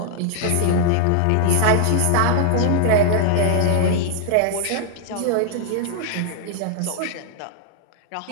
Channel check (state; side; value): different; both; correlation 0.00